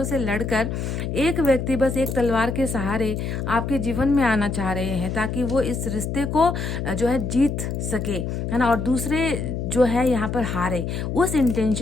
से लड़कर एक व्यक्ति बस एक तलवार के सहारे आपके जीवन में आना चाह रहे हैं, ताकि वो इस रिश्ते को जो है जीत सके, है ना, और दूसरे जो है यहाँ पर हारे। उस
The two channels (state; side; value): noise; left; hum, 3 dB below the sound